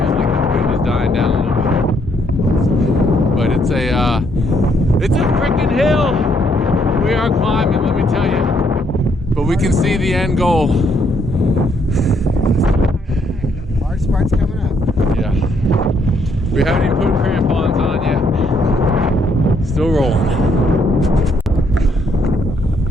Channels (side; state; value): both; normal; correlation 0.72